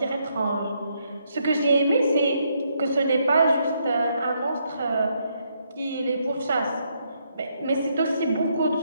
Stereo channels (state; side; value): inverted; both; correlation -0.75